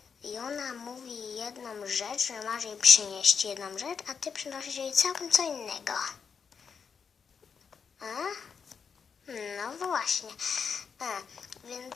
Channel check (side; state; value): right; quieter; 6.2 dB